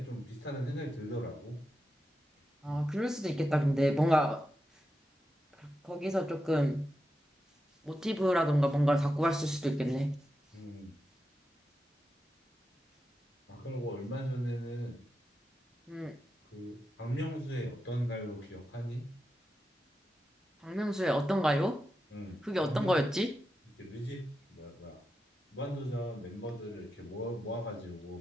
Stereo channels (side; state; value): both; normal; correlation 0.89